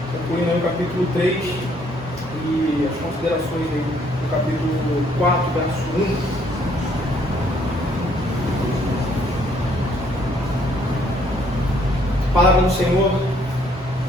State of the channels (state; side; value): normal; both; correlation 0.65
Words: concluindo aí o capítulo 3 e as considerações aí do capítulo 4, verso 1. A palavra do Senhor